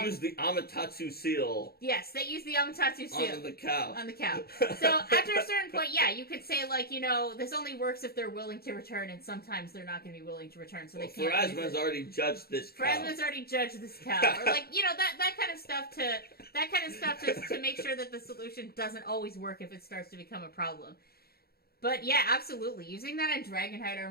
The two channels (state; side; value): late; right; 0.45 ms